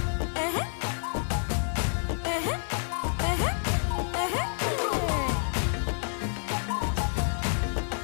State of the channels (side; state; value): right; silent; digital silence